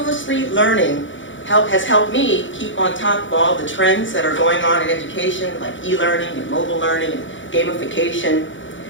learning has helped me keep on top of all the trends that are going on in education, like e-learning and mobile learning and gamification.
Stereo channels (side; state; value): right; late; 0.56 ms